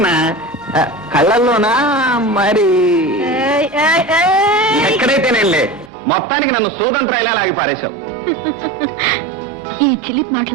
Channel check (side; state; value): left; drops out; at 5.9 s